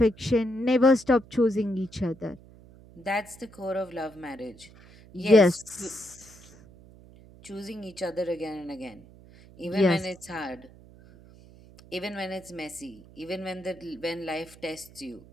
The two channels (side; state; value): right; noise; hum, 22 dB below the sound